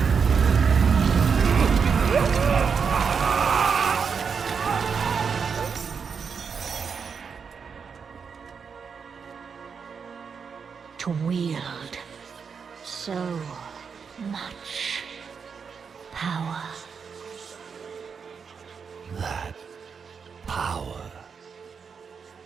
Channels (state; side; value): quieter; left; 6.1 dB